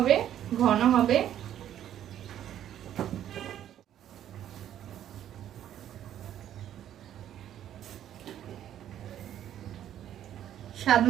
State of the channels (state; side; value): quieter; left; 11.0 dB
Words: ঘন হবে। স্বাদ